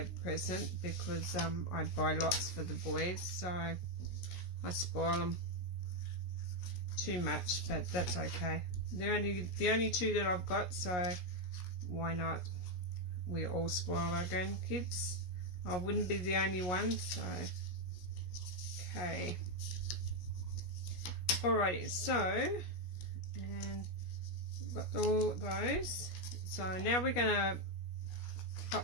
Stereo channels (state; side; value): late; right; 17 ms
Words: present because I buy lots for the boys, so I spoil them too much, but that's okay. They're the only two that I've got, so why not? We all spoil our grandkids. I wouldn't be the only one, so okay. Alrighty, so and we've got all those. So now we're gonna